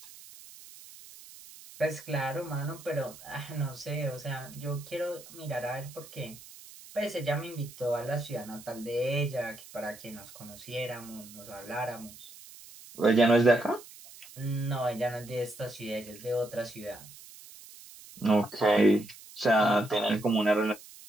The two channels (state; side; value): noise; right; hiss, 18 dB below the sound